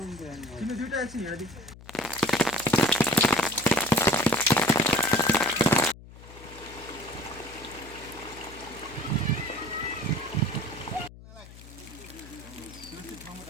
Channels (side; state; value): left; noise; hum, 18 dB below the sound